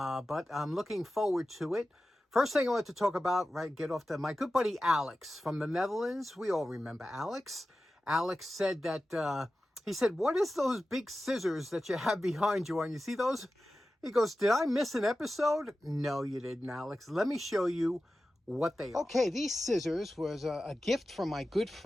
I'm looking forward to it. First thing I want to talk about, get off to my good buddy Alex from the Netherlands. We all remember Alex. Alex said that, he said, what is those big scissors that you have behind you on? You see those? He goes, did I miss an episode? No, you didn't, Alex. Let me show you what they are. Okay, these scissors was a gift from my good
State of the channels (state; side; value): normal; both; correlation 0.94